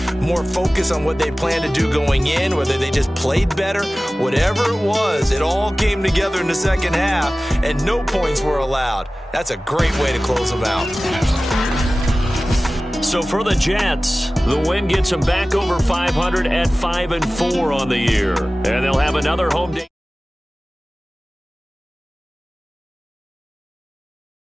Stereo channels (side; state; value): both; normal; correlation 0.97